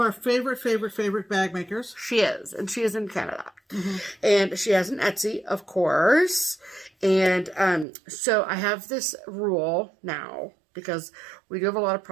favorite bag makers. She is. And she is in Canada. And she has an Etsy, of course. And so I have this rule now, because we do have a lot of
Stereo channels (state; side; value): drops out; left; at 7.9 s